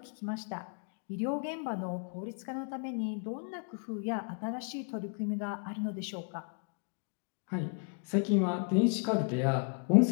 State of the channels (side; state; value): right; quieter; 39.8 dB